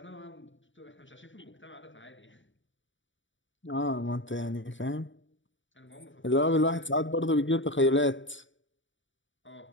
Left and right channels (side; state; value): right; late; 0.55 ms